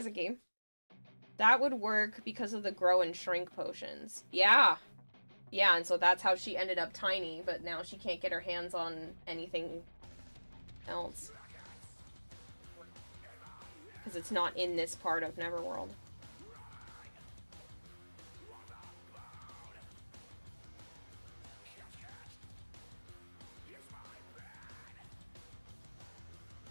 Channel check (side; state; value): both; inverted; correlation -1.00